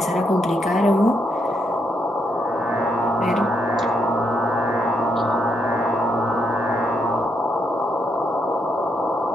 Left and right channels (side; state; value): both; normal; correlation 0.78